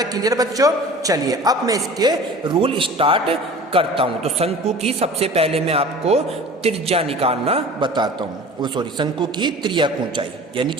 क्लियर बच्चों? चलिए अब मैं इसके रूल स्टार्ट करता हूं। तो शंकु की सबसे पहले मैं आपको त्रिज्या निकालना बताता हूं। शंकु की त्रियक ऊंचाई, यानी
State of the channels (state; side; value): normal; both; correlation 0.41